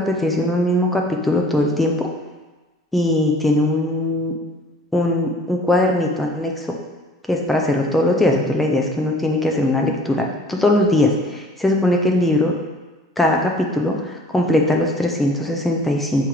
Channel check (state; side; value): normal; both; correlation 0.51